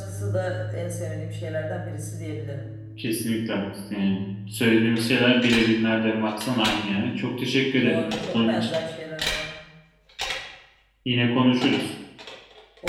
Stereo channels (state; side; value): identical; both; correlation 1.00